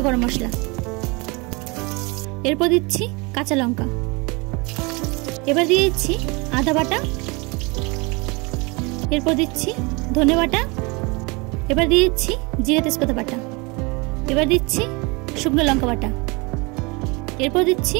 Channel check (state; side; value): quieter; left; 27.6 dB